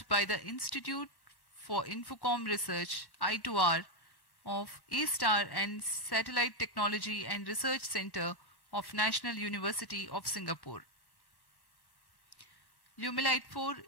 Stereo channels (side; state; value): right; late; 1.0 ms